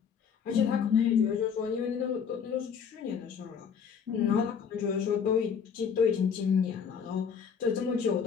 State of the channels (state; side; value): quieter; right; 6.8 dB